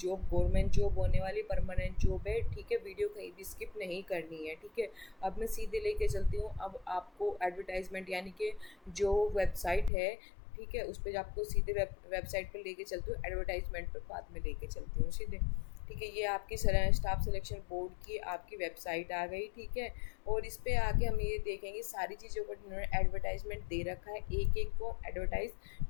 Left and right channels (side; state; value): right; drops out; at 9.9 s